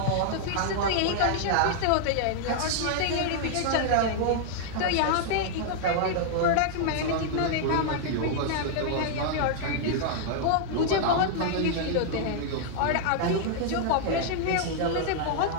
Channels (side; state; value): both; different; correlation -0.01